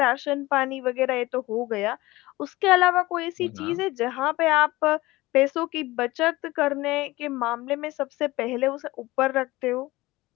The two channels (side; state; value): right; quieter; 19.5 dB